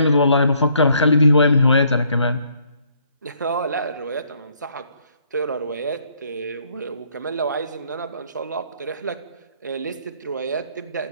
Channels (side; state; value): both; inverted; correlation -0.67